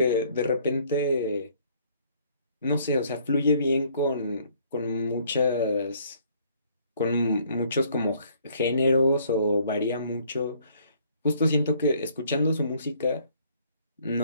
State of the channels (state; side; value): inverted; both; correlation -0.62